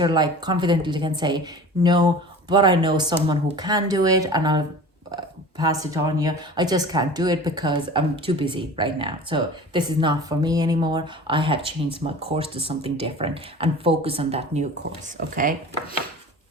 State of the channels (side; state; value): both; normal; correlation 0.39